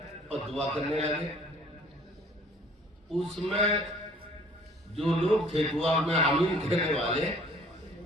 اور دعا کرنے لگے. اس میں جو لوگ تھے دعا میں آمین کہنے والے,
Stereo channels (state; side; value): normal; both; correlation 0.54